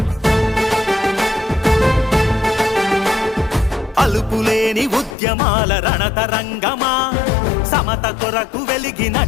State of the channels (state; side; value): drops out; right; at 5.2 s